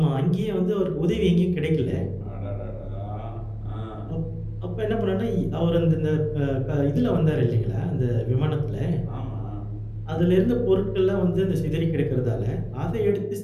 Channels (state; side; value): identical; both; correlation 1.00